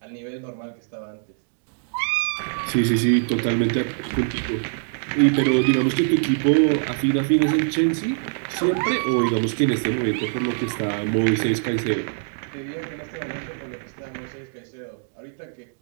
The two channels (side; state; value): left; silent; digital silence